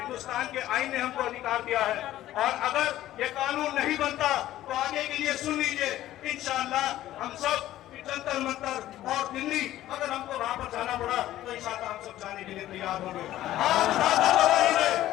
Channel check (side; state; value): right; quieter; 13.9 dB